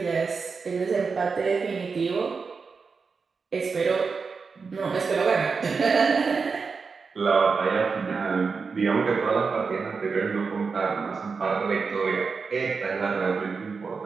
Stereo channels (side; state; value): left; quieter; 5.0 dB